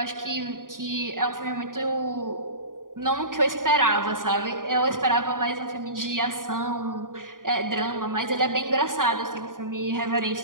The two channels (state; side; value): late; left; 0.90 ms